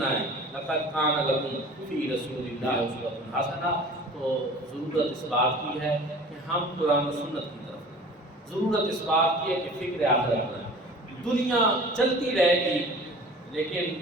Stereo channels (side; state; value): both; normal; correlation 0.43